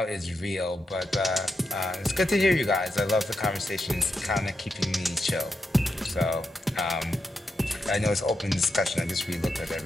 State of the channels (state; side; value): normal; both; correlation 0.85